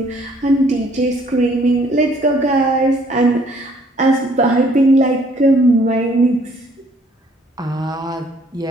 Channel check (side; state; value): both; normal; correlation 0.62